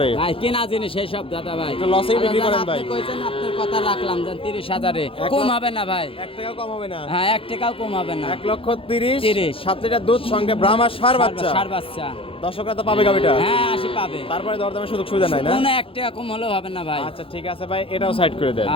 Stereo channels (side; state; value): right; late; 0.27 ms